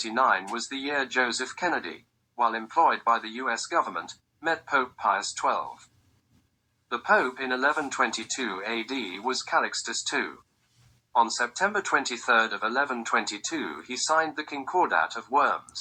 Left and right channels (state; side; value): identical; both; correlation 1.00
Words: was the year Joseph Kennedy, while employed by the U.S. government, met Pope Pius XII. The Pope in 1122 AD was Calixtus II. On September 23 of 1122 he signed the Concordat of